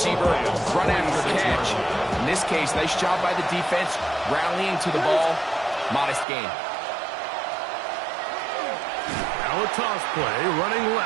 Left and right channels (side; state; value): left; drops out; at 6.2 s